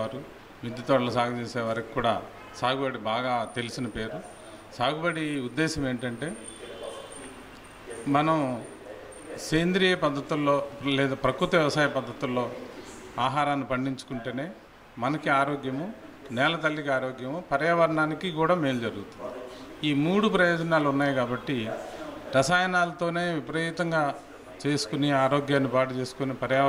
మిద్దె తోటలు సాగు చేసేవారికి కూడా సాగుబడి బాగా తెలిసిన పేరు. సాగుబడి ఉద్దేశం ఏంటంటే, మనం సేంద్రియ పద్ధతుల్లో లేదా ప్రకృతి వ్యవసాయ పద్ధతుల్లో ఆహారాన్ని పండించుకుంటేనే మనకి ఆరోగ్యము, నేల తల్లికి ఆరోగ్యము, పర్యావరణానికి కూడా మేలు జరుగుతుంది. ఈ 3 ప్రయోజనాలు ఉన్నాయి కాబట్టి రసాయనాలతోనే విపరీతంగా చేసుకుని ఆరోగ్యాన్ని పాడు చేసుకుని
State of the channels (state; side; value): identical; both; correlation 1.00